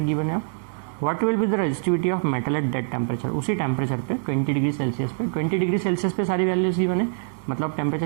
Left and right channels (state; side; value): silent; left; digital silence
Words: है। What will be the resistivity of metal at that temperature, उसी टेम्परेचर पे 20 डिग्री सेल्सियस पे, 20 डिग्री सेल्सियस पे सारी वैल्यूज गिवन है, मतलब टेम्परेचर